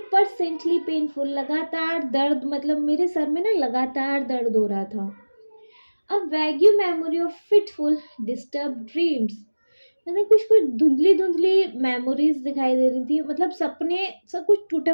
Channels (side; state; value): both; inverted; correlation -1.00